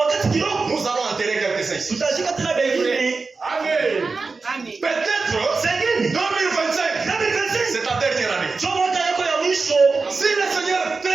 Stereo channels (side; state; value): left; quieter; 4.2 dB